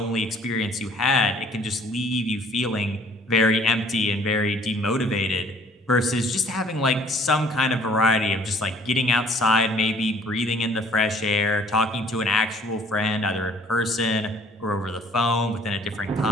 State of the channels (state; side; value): normal; both; correlation 0.57